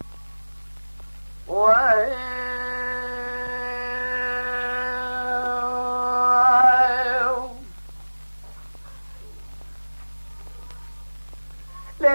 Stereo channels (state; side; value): inverted; both; correlation -1.00